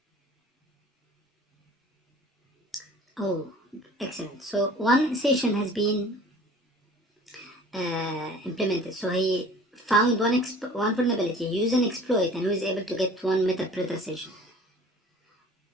Oh, excellent. So one session has been implemented. So he found one vulnerability, he used an exploit, and he was able to get one MetaPredator session.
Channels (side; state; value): both; normal; correlation 0.47